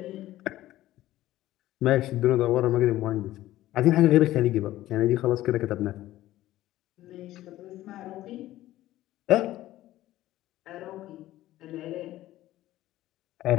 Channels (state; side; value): quieter; right; 15.1 dB